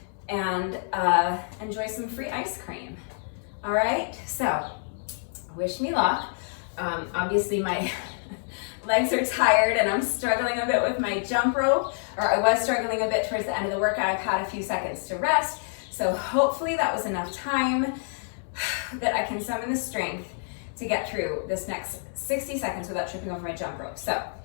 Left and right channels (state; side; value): silent; right; digital silence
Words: and enjoy some free ice cream. All right, so wish me luck. Obviously my legs are tired and I'm struggling a bit with my jump rope, or I was struggling a bit towards the end of the workout. I've had a few seconds to rest, so hopefully that was enough time that I can summon the strength to get through this next 60 seconds without tripping over my jump rope. So